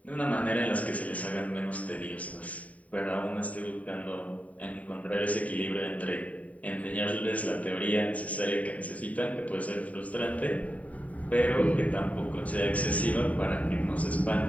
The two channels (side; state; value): right; late; 0.069 ms